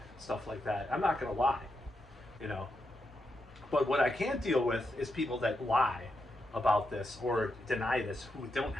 stuff like that. I'm not going to lie, you know. But what I can't deal with is people that lie about this or deny this, who don't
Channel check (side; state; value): both; normal; correlation 0.84